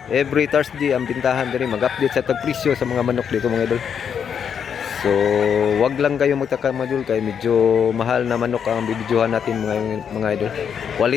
Every Thursday ang bintahan dito, mag-update sa tagpresyo sa mga manok dito mga idol. So, wag lang kayo magtaka mga idol, kaya medyo mahal na manok ang bibidyohan natin mga idol.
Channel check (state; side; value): quieter; right; 7.6 dB